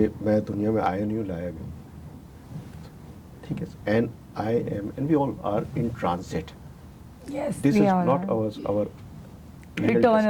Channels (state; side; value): identical; both; correlation 1.00